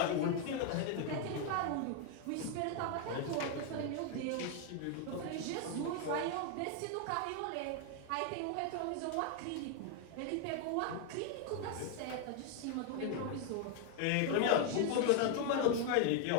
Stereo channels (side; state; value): both; different; correlation 0.01